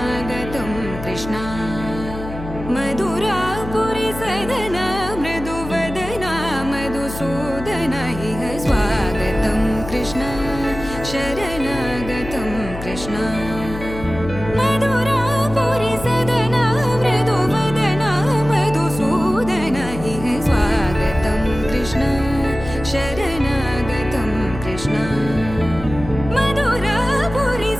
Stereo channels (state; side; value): noise; left; hum, 10 dB below the sound